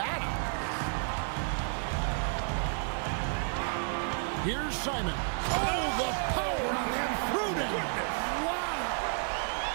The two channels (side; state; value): left; silent; 55 dB below the other